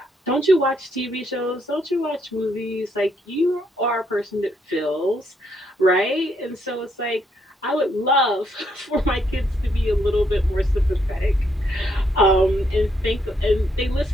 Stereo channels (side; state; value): both; normal; correlation 0.74